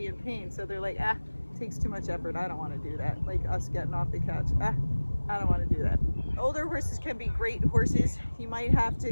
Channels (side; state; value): both; inverted; correlation -1.00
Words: in pain. So they're like, it takes too much effort, I don't want to do that. Like us getting off the couch, I don't want to do that. Older horses can be great horses. You might have to